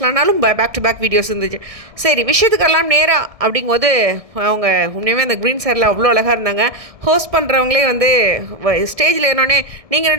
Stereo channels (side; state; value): left; late; 1.6 ms